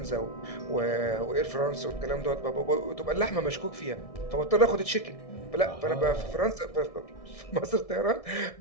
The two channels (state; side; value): late; right; 1.6 ms